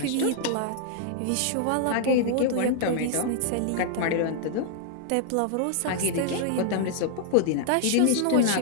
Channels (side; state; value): both; different; correlation 0.00